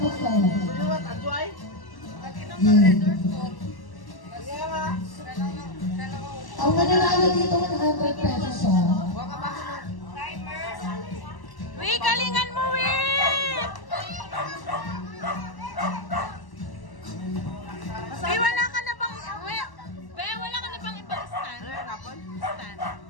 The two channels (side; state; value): right; late; 1.1 ms